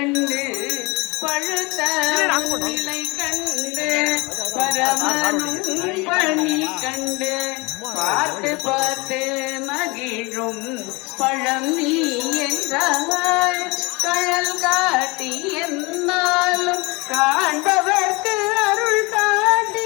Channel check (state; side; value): quieter; right; 26.0 dB